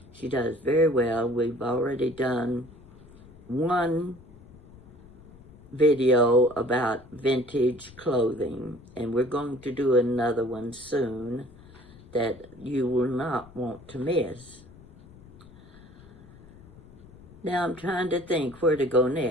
She does very well. We've already done one video about vintage clothing, and we're going to do another one soon that you will not want to miss. Now I'm trying to think where to go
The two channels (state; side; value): noise; left; rumble, 22 dB below the sound